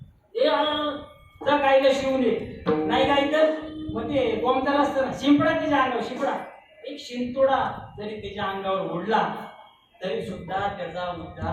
तर काहीला शिवले नाही काही तर मग ते कोमतर असतं ना शिंपडा त्याच्या अंगावर शिंपडा एक शिंतोडा जरी त्याच्या अंगावर उडला तरी सुद्धा त्याचा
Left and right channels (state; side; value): identical; both; correlation 1.00